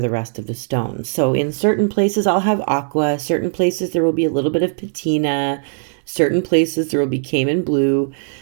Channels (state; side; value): silent; left; 67 dB below the other